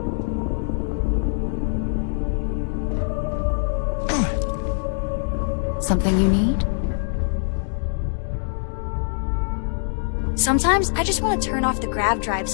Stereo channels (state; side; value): silent; right; digital silence